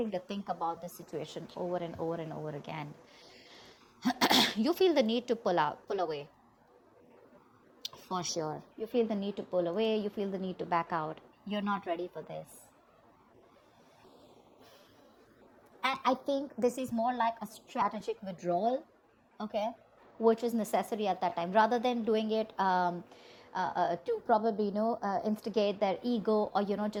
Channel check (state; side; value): identical; both; correlation 1.00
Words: to think about the situation over and over and over again. You feel the need to pull away. For sure. You feel the need to pull away. You feel the need to back out. You're not ready for this. And I think this is more like a strategic withdrawal, okay, which is necessary at that time, rather than doing it to probably, instigate their ego, or,